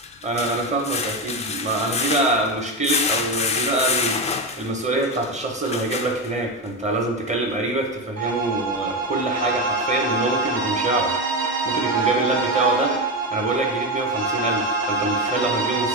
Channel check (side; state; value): both; normal; correlation 0.14